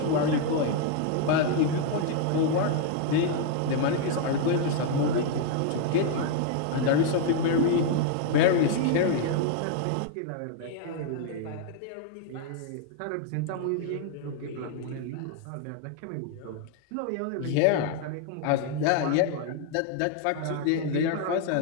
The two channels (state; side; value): different; both; correlation 0.00